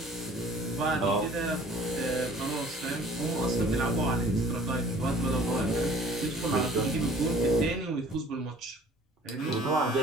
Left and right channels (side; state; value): both; normal; correlation 0.51